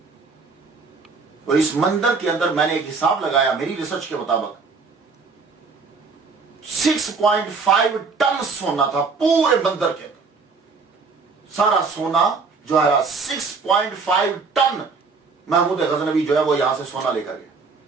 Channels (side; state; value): left; quieter; 4.6 dB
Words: اور اس مندر کے اندر میں نے ایک حساب لگایا میری ریسرچ کے مطابق 6.5 ٹن سونا تھا پورے مندر کے اندر. سارا سونا جو ہے 6.5 ٹن محمود غزنوی جو ہے وہ یہاں سے سونا لے کر گیا.